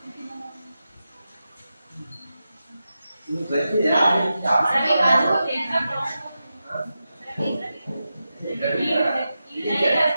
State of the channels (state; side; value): inverted; both; correlation -0.90